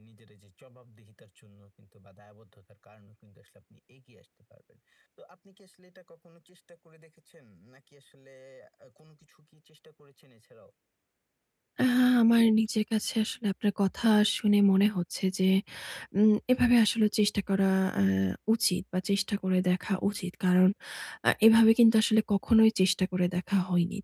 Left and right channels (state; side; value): identical; both; correlation 1.00